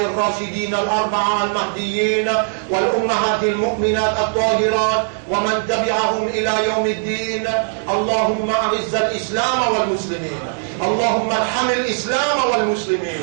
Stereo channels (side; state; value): left; silent; digital silence